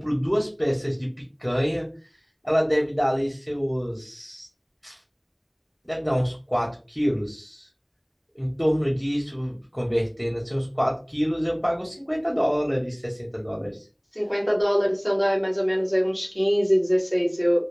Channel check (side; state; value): both; identical; correlation 1.00